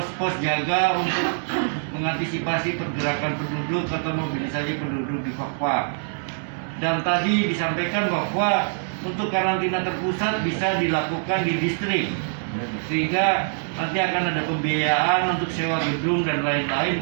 jaga untuk mengantisipasi pergerakan penduduk atau mobilisasi penduduk di Fakfak. Dan tadi disampaikan bahwa untuk karantina terpusat bisa dilakukan di distrik, sehingga nanti akan ada pembiayaan untuk sewa gedung dan lain-lain,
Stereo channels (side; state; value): left; silent; digital silence